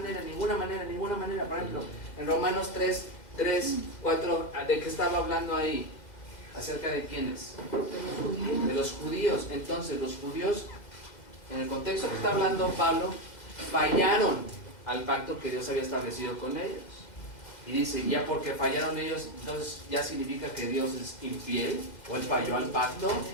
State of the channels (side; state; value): right; late; 2.0 ms